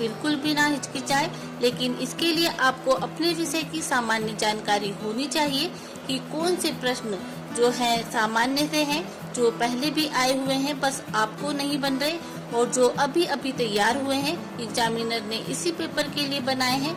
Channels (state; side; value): identical; both; correlation 1.00